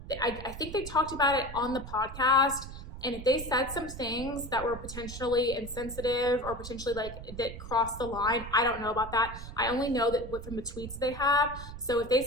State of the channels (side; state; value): right; noise; rumble, 11 dB below the sound